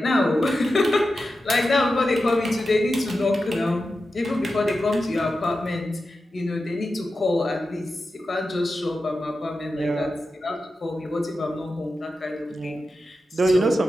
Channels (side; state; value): both; normal; correlation 0.91